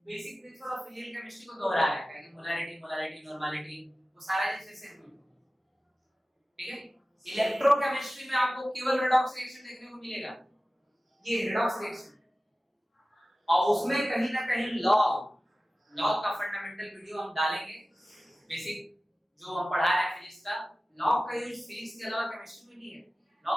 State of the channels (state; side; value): normal; both; correlation 0.96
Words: basic principle of physical chemistry को दोहरा रहे हैं कि मोलारिटी नॉर्मलिटी वो सारा जैसे से, ठीक है। इलेक्ट्रोकेमिस्ट्री में आपको केवल रेडॉक्स रिएक्शन देखने को मिलेगा, ये रेडॉक्स रिएक्शन, और उसमें कहीं ना कहीं लॉग का फंडामेंटल वीडियो हम डालेंगे, बेसिक जो हम पढ़ा रहे हैं फिजिक्स का, लॉग का यूज फिजिक्स के अलावा केमिस्ट्री में नहीं है, लॉग